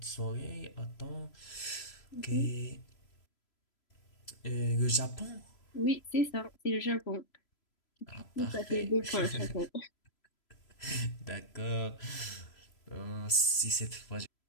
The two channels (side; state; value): right; late; 3.0 ms